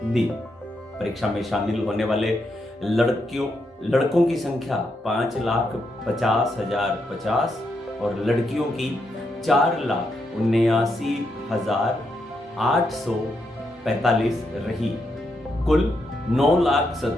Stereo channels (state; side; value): normal; both; correlation 0.81